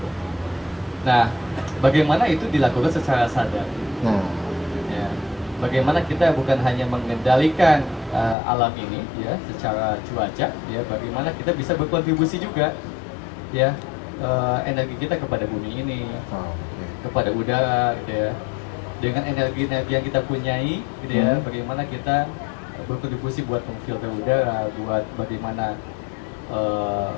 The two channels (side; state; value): right; drops out; at 8.3 s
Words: Nah, bagaimana itu dilakukan secara sadar? Nah, Ya, bagaimana kita bukan hanya mengendalikan alam ini ya secara cuaca ya, bagaimana kita bisa berkontribusi juga ya energi kita kepada bumi ini, kepada udara gitu ya, dengan energi yang kita punyai gitu ya, bagaimana kita berkontribusi buat memfilter udara, buat bagaimana